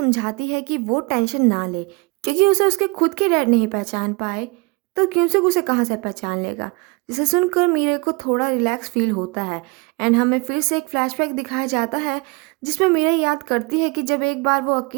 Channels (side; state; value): left; quieter; 28.8 dB